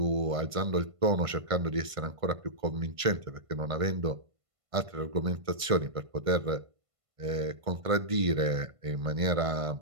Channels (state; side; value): late; left; 1.5 ms